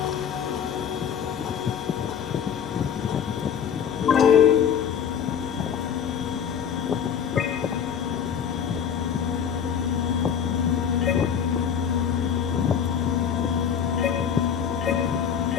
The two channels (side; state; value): right; quieter; 7.9 dB